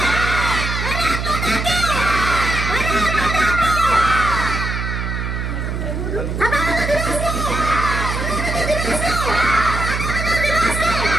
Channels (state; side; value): noise; right; hum, 3 dB below the sound